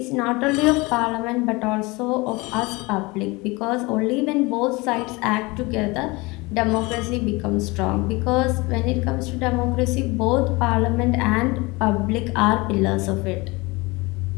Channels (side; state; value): right; quieter; 24.4 dB